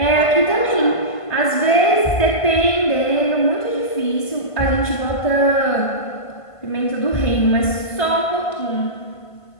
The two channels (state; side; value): late; right; 1.5 ms